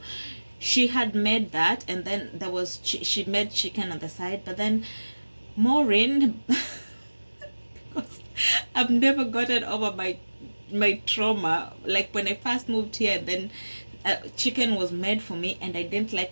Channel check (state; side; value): inverted; both; correlation -1.00